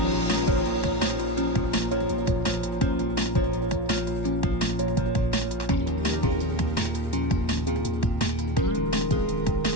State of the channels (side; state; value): right; late; 1.1 ms